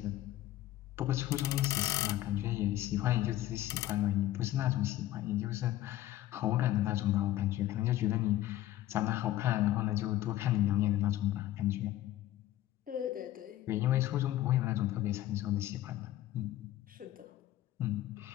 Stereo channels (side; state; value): right; quieter; 14.3 dB